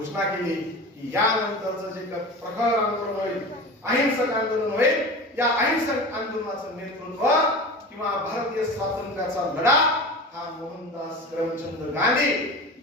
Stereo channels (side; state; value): both; normal; correlation 0.32